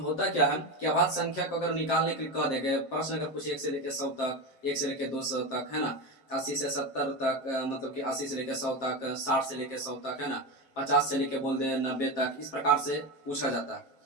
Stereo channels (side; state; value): right; late; 7.6 ms